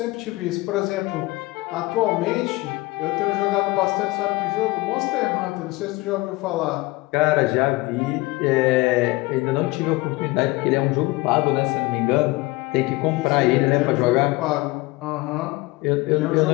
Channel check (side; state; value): right; quieter; 21.8 dB